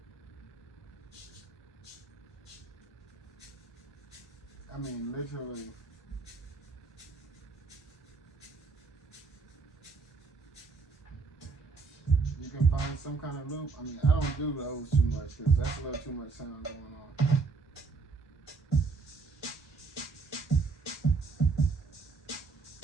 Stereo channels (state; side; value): quieter; left; 4.4 dB